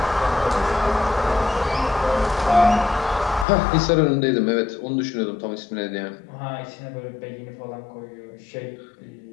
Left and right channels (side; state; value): right; drops out; at 3.5 s